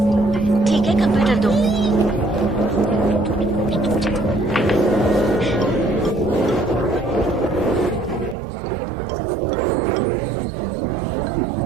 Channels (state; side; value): drops out; left; at 8.3 s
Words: ठीक है, कंप्यूटर दो।